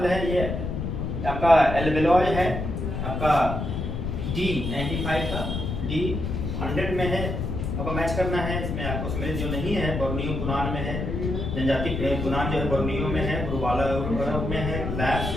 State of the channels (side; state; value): left; noise; rumble, 3 dB below the sound